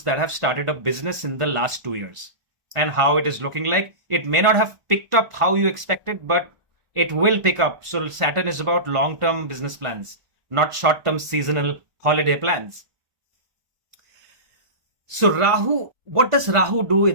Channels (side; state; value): left; late; 1.5 ms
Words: that have started a business in the last 2 years and how it is looking like. It may not have picked up how you expected, but it will pick up. So Saturn is about long-term business plans, not short-term seasonal holiday plans. So Rahu, what does Rahu do